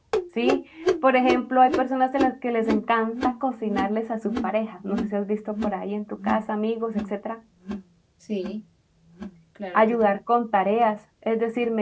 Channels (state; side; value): identical; both; correlation 1.00